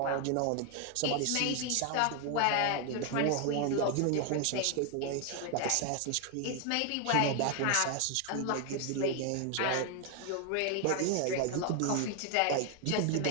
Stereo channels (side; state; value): both; different; correlation 0.01